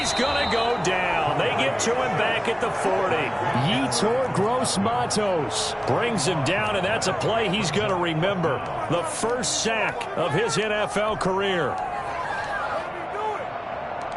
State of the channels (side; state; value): both; identical; correlation 1.00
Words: going to go down. They get to him back at the 40. Yetur Gross-Matos brings him down, and that's a play he's going to remember. The first sack of his NFL career.